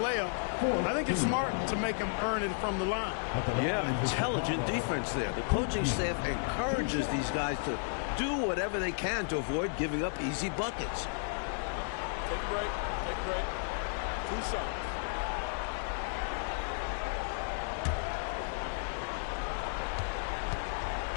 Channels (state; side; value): silent; right; digital silence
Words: I think it's smart to make him earn it from the line. Yeah, intelligent defense there. The coaching staff encourages these guys to do whatever they can to avoid giving up easy buckets. Take a break. Take a break. 2 shots.